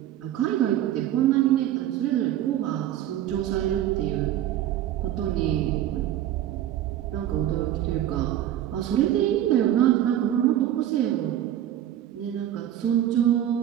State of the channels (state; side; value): quieter; left; 11.9 dB